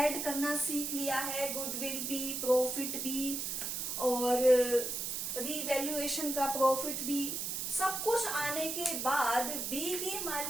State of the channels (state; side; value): noise; right; hiss, 2 dB below the sound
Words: करना सीख लिया है, गुडविल भी, प्रॉफिट भी और रीवैल्यूएशन का प्रॉफिट भी, सब कुछ आने के बाद बी की